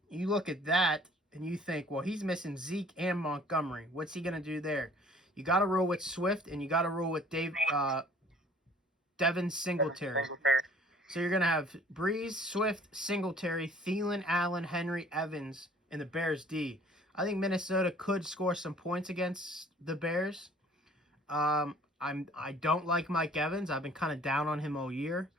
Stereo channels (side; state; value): both; normal; correlation 0.54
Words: you look at that and you think, well, he's missing Zeke and Montgomery. What's he gonna do there? You got to roll with Swift and you got to roll with Devin Singletary. So you're gonna have Breeze, Swift, Singletary, Thielen, Allen, Henry, Evans, and the Bears D. I think Minnesota could score some points against the Bears. I don't like Mike Evans. I've been kind of down on him all year.